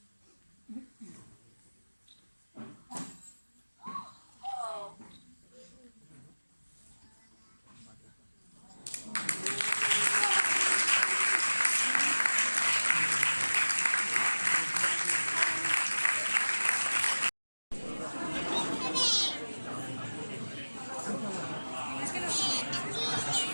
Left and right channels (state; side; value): inverted; both; correlation -1.00